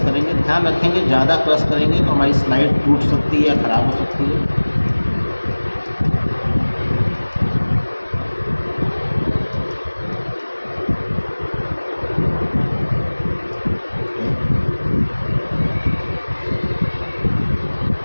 ध्यान रखेंगे, ज़्यादा क्रश करेंगे तो हमारी स्लाइड टूट सकती है या ख़राब हो सकती है।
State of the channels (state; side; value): inverted; both; correlation -1.00